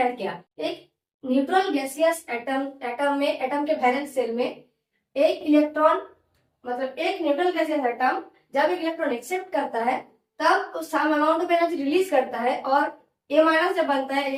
क्या? एक न्यूट्रल गैसियस एटम में, एटम के वैलेंस शेल में एक इलेक्ट्रॉन, मतलब एक न्यूट्रल गैसियस एटम जब एक इलेक्ट्रॉन एक्सेप्ट करता है तब उस some amount of energy release करता है, और ए माइनस जब बनता है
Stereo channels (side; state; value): both; identical; correlation 1.00